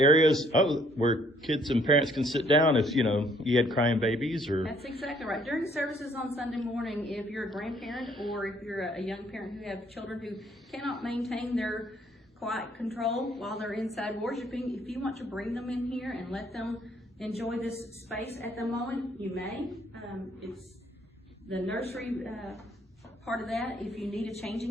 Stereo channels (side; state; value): both; normal; correlation 0.64